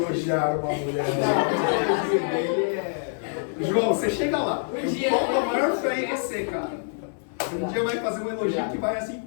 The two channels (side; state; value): right; silent; digital silence